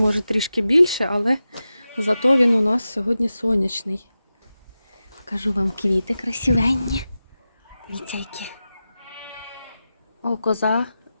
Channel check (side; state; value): both; inverted; correlation -0.93